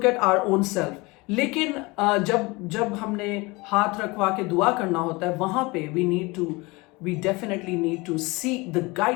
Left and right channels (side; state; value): right; quieter; 24.4 dB